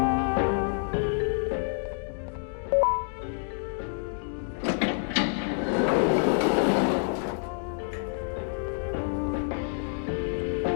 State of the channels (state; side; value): silent; right; 59 dB below the other